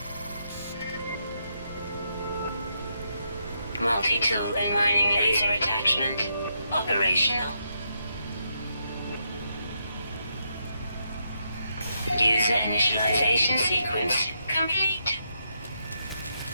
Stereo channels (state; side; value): inverted; both; correlation -0.80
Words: Multi-tool and mining laser attachment operational. User initialization sequence complete.